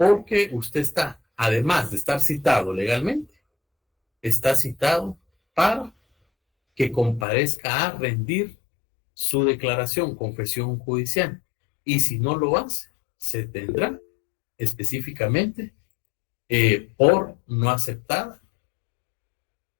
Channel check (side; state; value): right; drops out; at 7.2 s